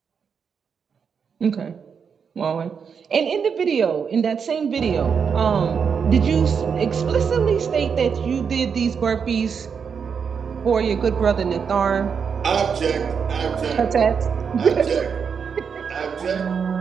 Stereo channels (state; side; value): quieter; left; 6.5 dB